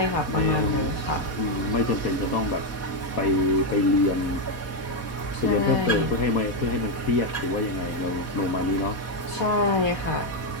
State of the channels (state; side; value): late; right; 4.2 ms